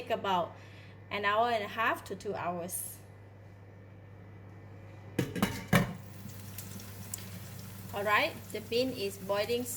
about an hour and a half to 2 hours. Alright, the bean is boiling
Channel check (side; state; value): both; identical; correlation 1.00